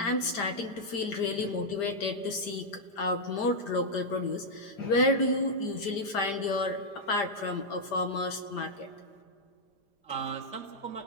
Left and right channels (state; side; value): late; right; 5.0 ms